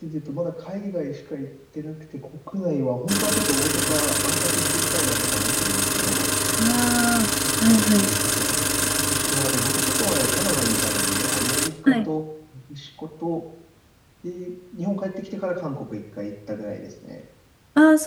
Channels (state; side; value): identical; both; correlation 1.00